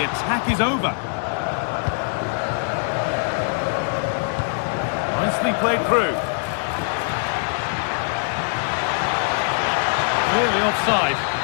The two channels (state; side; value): silent; right; digital silence